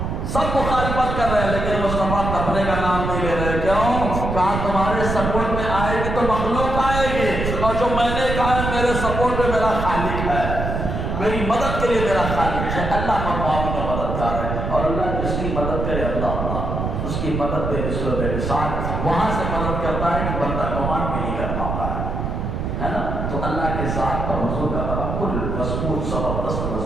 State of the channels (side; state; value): right; noise; rumble, 2 dB below the sound